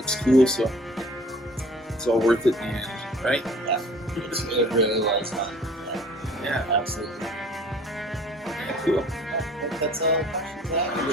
cool, so it's all worth it in the end, right? Yeah, it really was fun. Yeah, absolutely. Yeah, cool. I think that's all the questions I have. It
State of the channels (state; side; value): normal; both; correlation 0.50